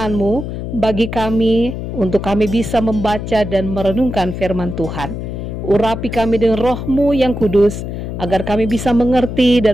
bagi kami, untuk kami bisa membaca dan merenungkan firman Tuhan. Urapi kami dengan Roh-Mu yang kudus, agar kami bisa mengerti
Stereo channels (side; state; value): left; noise; hum, 6 dB below the sound